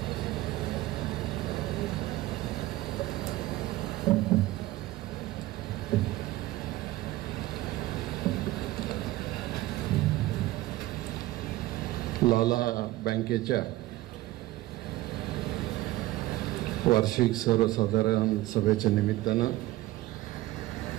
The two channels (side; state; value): left; quieter; 17.0 dB